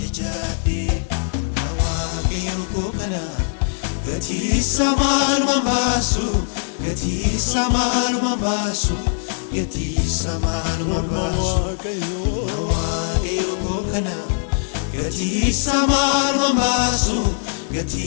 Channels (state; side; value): silent; right; digital silence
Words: jechaadhee Waaqayyo koo kana gatiisa maalumaan baasu gatiisa maalumaan baasu gatiisa maalumaan baasu Waaqayyo koo kana gatiisa maalumaan baasu